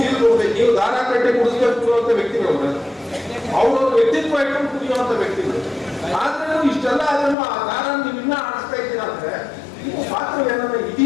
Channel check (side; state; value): right; drops out; at 7.4 s